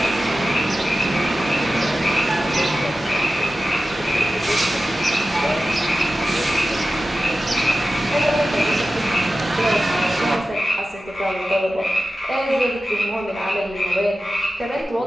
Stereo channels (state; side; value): normal; both; correlation 0.94